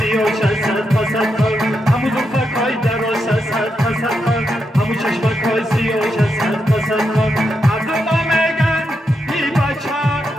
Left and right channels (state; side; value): normal; both; correlation 0.84